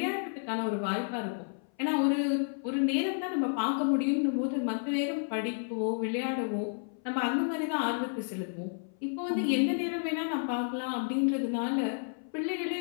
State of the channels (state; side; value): silent; right; 57 dB below the other